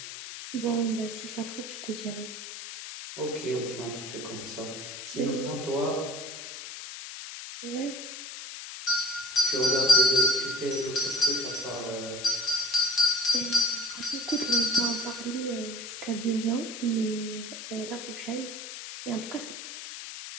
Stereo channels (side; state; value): left; noise; hiss, 10 dB below the sound